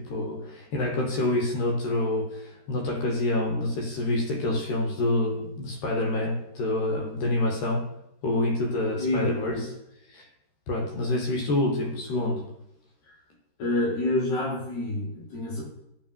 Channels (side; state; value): right; late; 13 ms